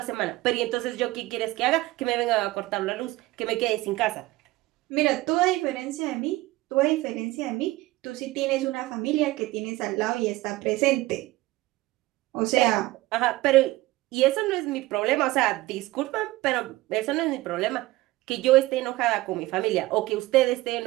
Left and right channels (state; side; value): quieter; left; 18.7 dB